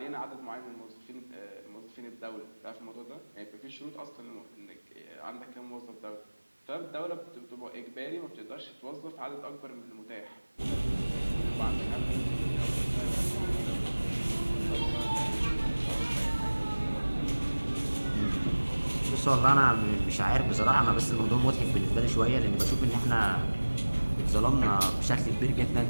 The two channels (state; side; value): inverted; both; correlation -1.00